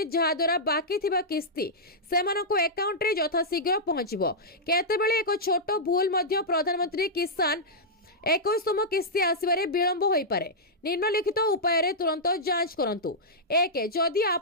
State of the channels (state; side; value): normal; both; correlation -0.10